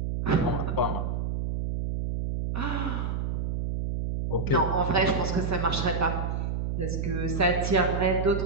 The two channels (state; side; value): noise; right; hum, 1 dB below the sound